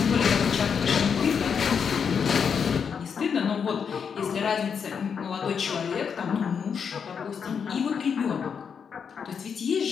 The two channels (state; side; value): quieter; right; 6.7 dB